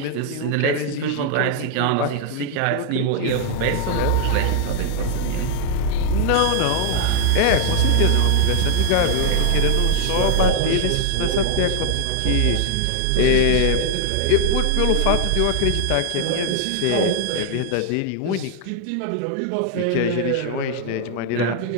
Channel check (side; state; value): both; different; correlation 0.00